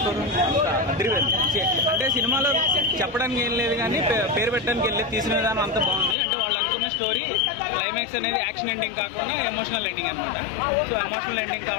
స్కోర్ అదిరిపోయింది. అంటే సినిమాలో చెప్పడానికి ఏం లేదు కానీ పేరు పెట్టడానికి వెళ్ళి తీసిన విధానం అంతా బాగుంది. అంటే వాళ్ళు అనుకున్న స్టోరీ క్లైమాక్స్ అనేది యాక్షన్ ఎండింగ్ కాకుండా ఎమోషనల్ ఎండింగ్ అనమాట. సో ఎమోషనల్ ఎండింగ్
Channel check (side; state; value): right; drops out; at 6.2 s